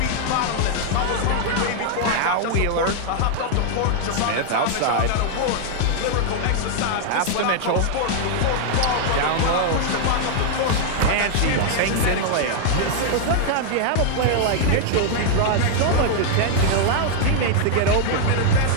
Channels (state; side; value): different; both; correlation -0.01